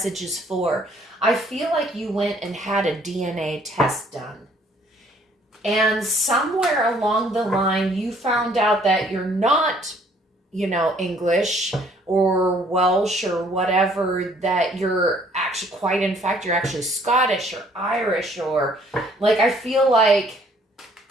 is for, I feel like you went and had a DNA test done. And somewhere along the line, you found out that you're not, English or Welsh or whatever, that you're actually you're actually Scottish or Irish, or I feel like,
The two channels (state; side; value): normal; both; correlation 0.61